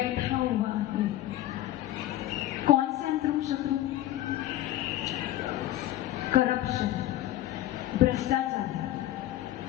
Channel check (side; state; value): right; quieter; 14.1 dB